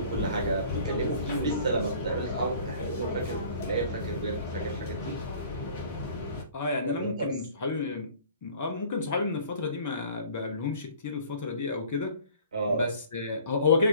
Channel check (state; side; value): inverted; both; correlation -0.49